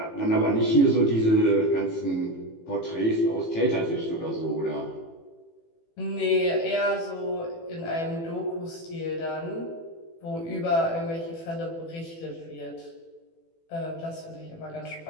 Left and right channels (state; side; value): late; right; 18 ms